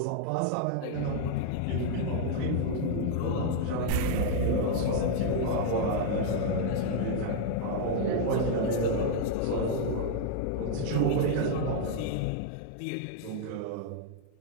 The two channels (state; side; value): different; both; correlation 0.00